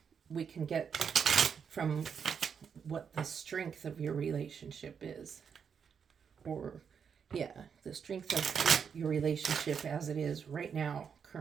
we can get from what the strength of your relationship is. Or, yeah, the strength of your relationship as it is right now,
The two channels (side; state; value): left; quieter; 6.8 dB